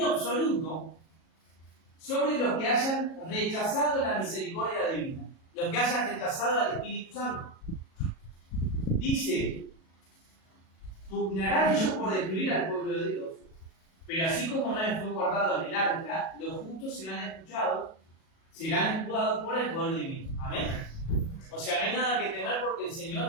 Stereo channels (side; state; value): right; late; 37 ms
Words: absoluto sobre los que hayan rechazado la misericordia divina, los que hayan rechazado al Espíritu Santo. Dice, pugnarán ellos por destruir al pueblo de Dios, pero así como Noé fue guardado en el arca, los justos serán escuchados por el poder divino. Amén. O sea, no hay nada que temer porque el